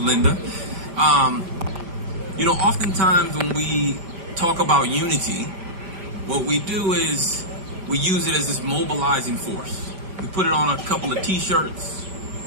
Oftentimes when we talk about unity, what we do is we use it as this mobilizing force. We put it on a couple of T-shirts.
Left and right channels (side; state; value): left; late; 5.1 ms